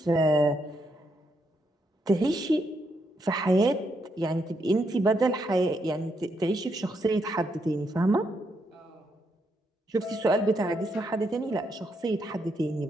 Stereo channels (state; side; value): normal; both; correlation 0.78